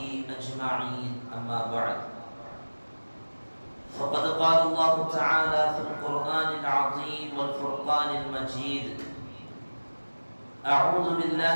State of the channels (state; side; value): inverted; both; correlation -1.00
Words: أجمعين، أما بعد. فقد قال الله تعالى في القرآن العظيم والفرقان المجيد: أعوذ